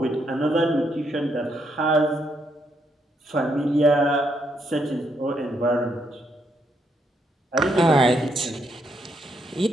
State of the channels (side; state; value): both; normal; correlation 0.76